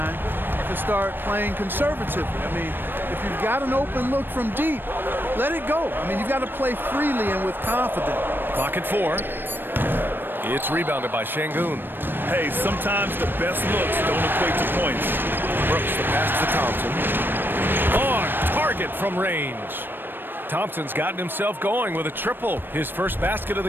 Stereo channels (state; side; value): late; left; 0.096 ms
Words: to start playing conservatively. I mean, if you've got an open look from deep, let it go. I mean, you've got to play freely and with confidence. Clock at 4. It's rebounded by Şengün. Hey, sometimes the best looks don't equate to points. Brooks the pass to Thompson. On target from range. Thompson's gotten himself going with a triple, his first basket of